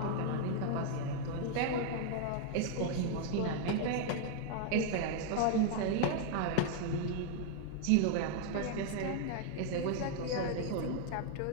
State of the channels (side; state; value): both; different; correlation 0.00